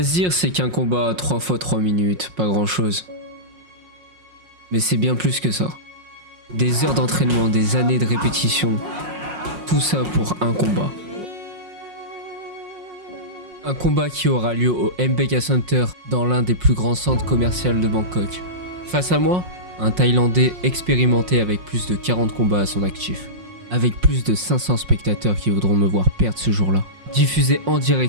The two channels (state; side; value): late; left; 5.5 ms